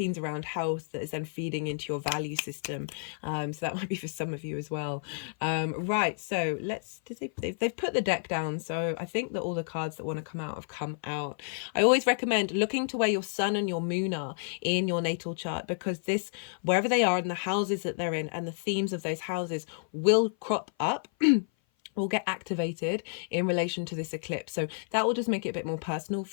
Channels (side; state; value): right; silent; 56 dB below the other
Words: around health, that is then feeding into your value system. So that might be for some of you as well. Right, so they've put the deck down, so I think that all the cards that want to come out have come out. I always recommend looking to where your sun and your moon are in your natal chart, because wherever they are in the houses that they're in and the themes of those houses will crop up will get activated in relation to this eclipse. So that will just make it a bit more personal